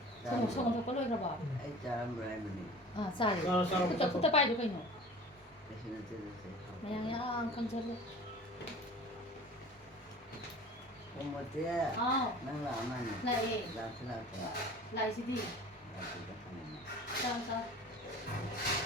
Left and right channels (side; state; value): both; normal; correlation 0.42